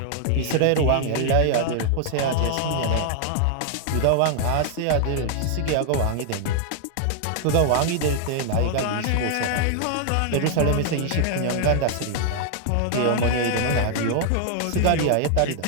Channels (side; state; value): both; different; correlation 0.00